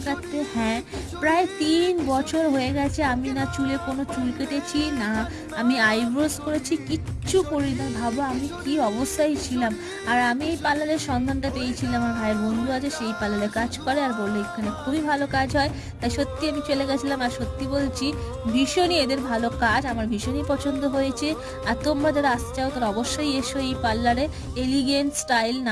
কাটতে। হ্যাঁ, প্রায় 3 বছর হয়ে গেছে আমি না চুলে কোনো চুল কেটেছি, না আমি আইব্রোজ করেছি, কিচ্ছু করি না। ভাবো আমি কি অবস্থায় ছিলাম। আর আমি এই পার্লারের সন্ধানটা পেয়েছিলাম, আমার ভাইয়ের বন্ধু আছে সেই পার্লারে কাজ করে, আর বললো এখানে খুবই ভালো কাজ হয়। তাই সত্যি আমি চলে গেছিলাম, আর সত্যি বলছি ভীষণই এদের ভালো কাজ, আমার ভীষণই পছন্দ হয়েছে। আর তোমরা যারা আসতে চাও তারা অবশ্যই এসো এই পার্লারে। এলিগেন্ট স্টাইল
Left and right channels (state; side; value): identical; both; correlation 1.00